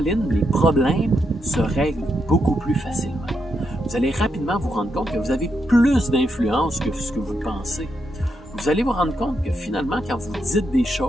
les problèmes se règlent beaucoup plus facilement. Vous allez rapidement vous rendre compte que vous avez plus d'influence que ce que vous pensez. Vous allez vous rendre compte que finalement, quand vous dites des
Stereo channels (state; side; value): normal; both; correlation 0.81